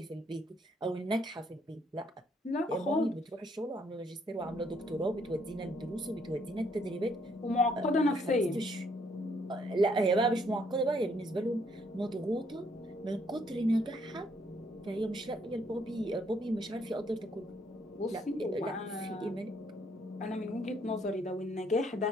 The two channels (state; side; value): normal; both; correlation 0.69